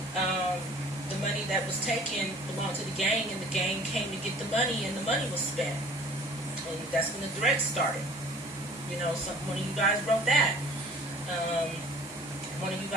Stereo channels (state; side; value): normal; both; correlation 0.50